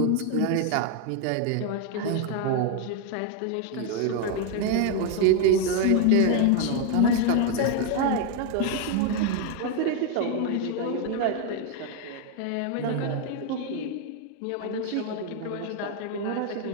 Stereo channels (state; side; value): different; both; correlation 0.01